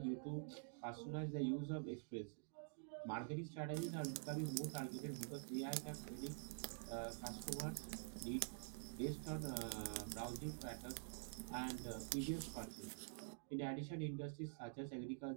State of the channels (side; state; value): left; silent; digital silence